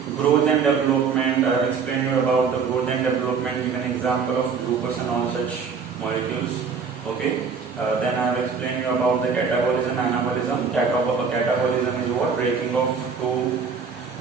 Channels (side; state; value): left; quieter; 5.7 dB